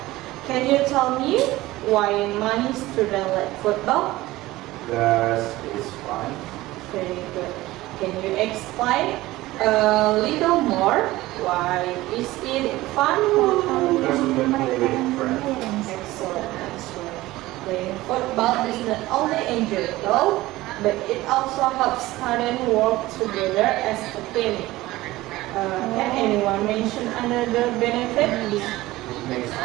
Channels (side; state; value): left; quieter; 17.9 dB